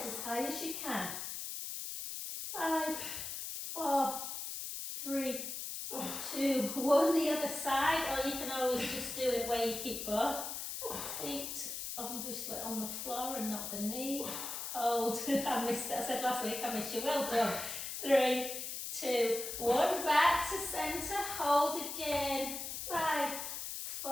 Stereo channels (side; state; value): left; noise; hiss, 5 dB below the sound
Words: as high as you can. 5, 4, 3, 2, 1. The other side, or you can always just do it where you keep both feet obviously on the floor and not the knee. Hold. I missed it. I said last week I missed you. Well done. 3, 2, 1. Back to centre. Hold again. 5,